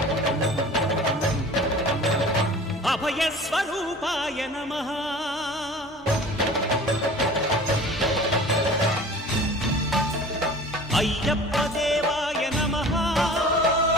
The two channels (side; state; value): both; normal; correlation 0.43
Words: అభయస్వరూపాయ నమః అయ్యప్పదేవాయ నమః